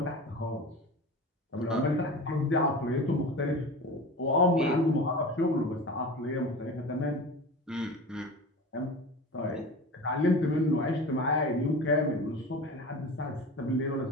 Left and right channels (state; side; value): normal; both; correlation 0.33